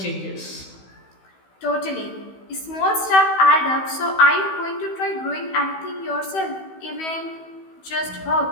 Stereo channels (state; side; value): late; right; 16 ms